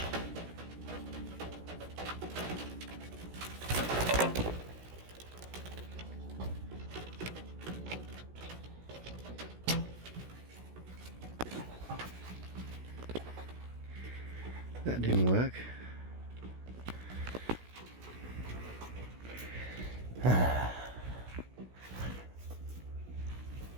That didn't work.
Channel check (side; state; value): left; late; 16 ms